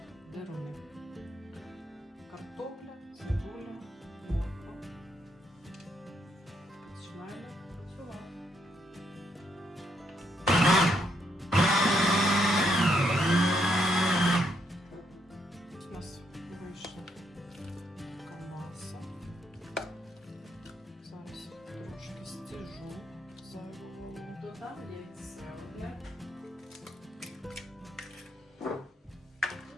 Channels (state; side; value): normal; both; correlation 0.76